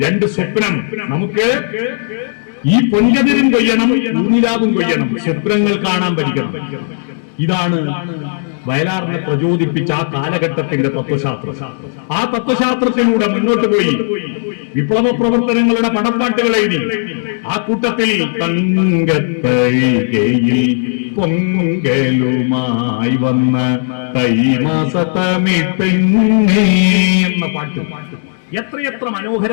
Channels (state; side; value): silent; right; digital silence